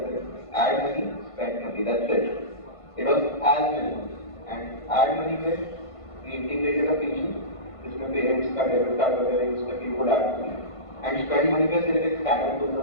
थे add money spend money that's it it was as minimum and add money में वी इंटीग्रेटेड अ फीचर जिसमें पेरेंट्स का डेबिट कार्ड वगैरह यूज करके वो add money and spend money पे सिर्फ एक स्कैनर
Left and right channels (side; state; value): right; late; 1.5 ms